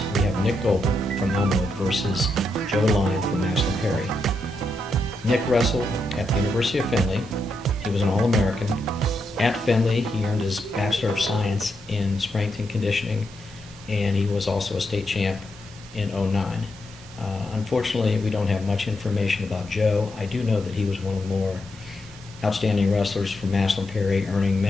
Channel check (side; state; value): both; normal; correlation 0.82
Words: we have Nick Goebel from Elmwood versus Joe Lyon from Maslin Perry. Nick wrestled at the University of Findlay. He was an All-American, At Findlay, he earned his Bachelor of Science in Strength and Conditioning, and he was also a state champ in '09. Unfortunately, we don't have much information about Joe. I do know that he was one of the more outstanding wrestlers from Massillon Perry, earning